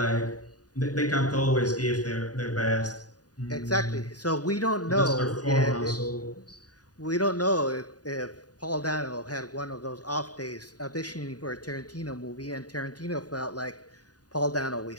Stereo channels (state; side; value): late; right; 0.68 ms